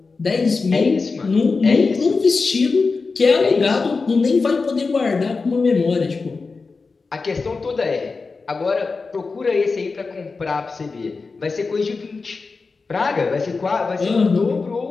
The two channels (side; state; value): right; quieter; 4.3 dB